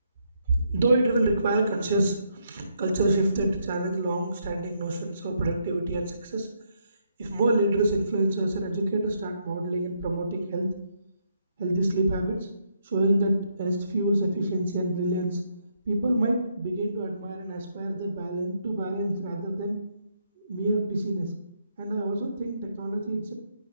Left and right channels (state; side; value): inverted; both; correlation -0.76